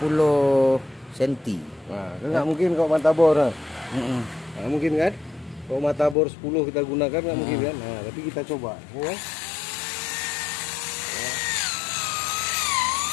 cm. Nah, nggak mungkin kalau matabor. Nah, mungkin kan? Kalau matabor 10 kita gunakan nggak mungkin kan? Nah, tapi kita coba. Ya.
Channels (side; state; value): right; drops out; at 6.2 s